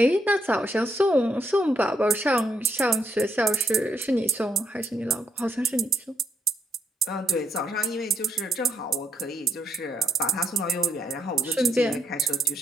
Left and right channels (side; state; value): both; normal; correlation 0.76